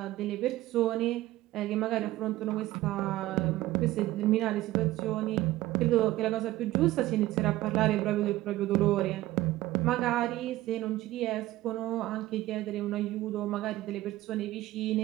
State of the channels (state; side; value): quieter; left; 16.3 dB